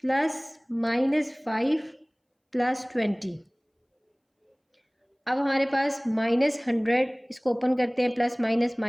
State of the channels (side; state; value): both; identical; correlation 1.00